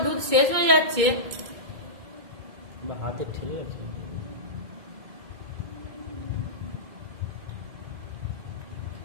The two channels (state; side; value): late; left; 2.2 ms